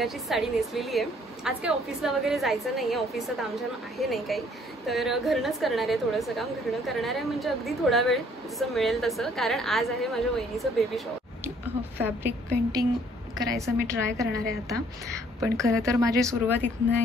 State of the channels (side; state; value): both; normal; correlation 0.61